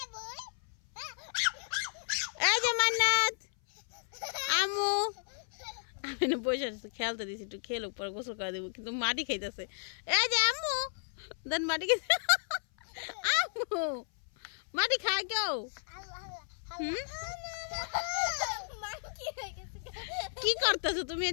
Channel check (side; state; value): right; silent; 55 dB below the other